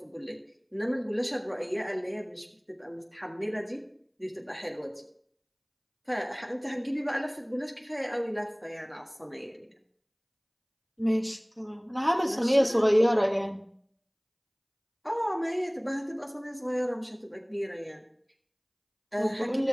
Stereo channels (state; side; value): identical; both; correlation 1.00